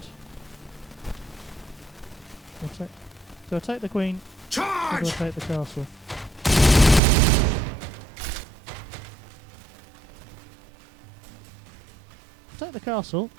Do I take the queen or Charge! do I take the castle? Take the castle.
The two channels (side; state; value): left; drops out; at 7.0 s